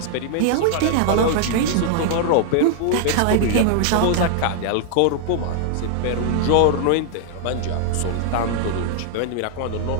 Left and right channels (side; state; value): both; different; correlation -0.01